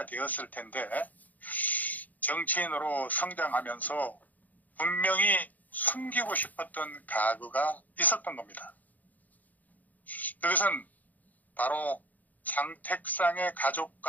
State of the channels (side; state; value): right; late; 0.079 ms